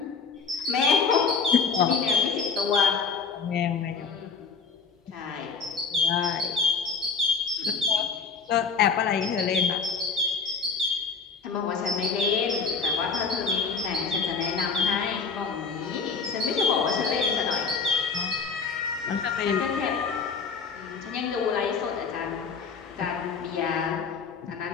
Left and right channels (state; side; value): quieter; right; 5.2 dB